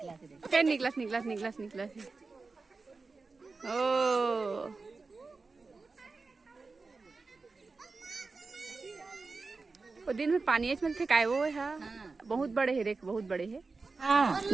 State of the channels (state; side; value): quieter; left; 4.0 dB